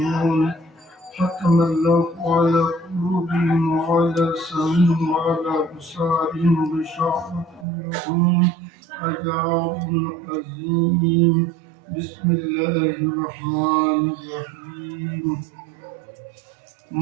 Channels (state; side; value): drops out; left; at 7.7 s